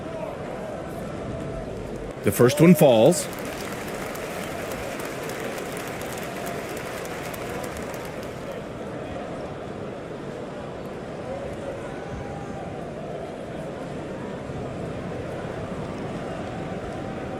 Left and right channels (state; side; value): identical; both; correlation 1.00